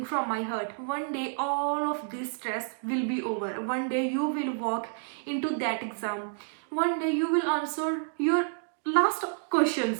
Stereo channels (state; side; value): silent; left; digital silence